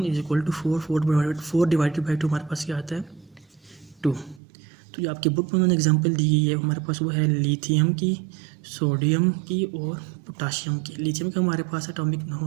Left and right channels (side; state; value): left; drops out; at 4.4 s